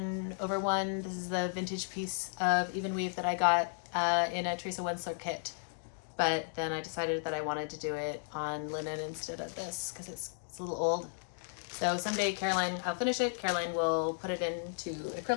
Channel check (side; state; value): right; silent; digital silence